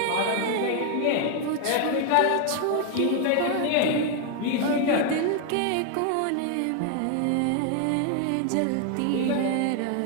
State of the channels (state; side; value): different; both; correlation 0.00